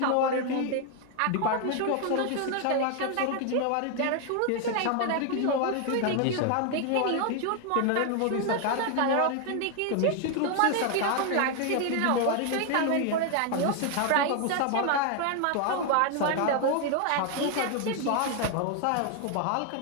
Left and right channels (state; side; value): different; both; correlation 0.01